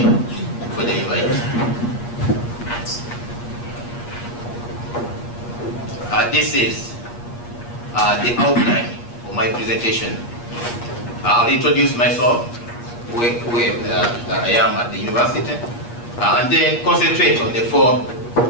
for the invite. This is the outline of my presentation. I'll introduce myself, where I am at the university, and then concentrate on the four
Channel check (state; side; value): late; right; 8.4 ms